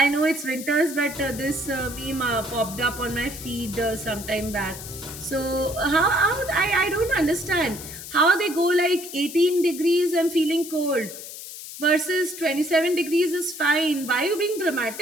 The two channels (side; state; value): left; noise; hiss, 12 dB below the sound